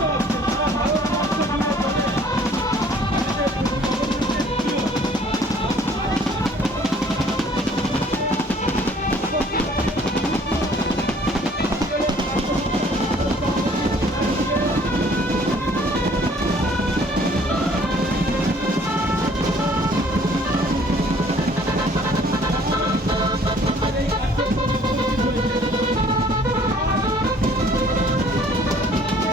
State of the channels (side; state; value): both; normal; correlation 0.57